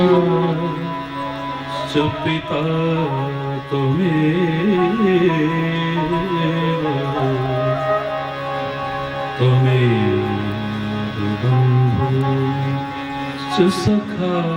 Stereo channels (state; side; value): identical; both; correlation 1.00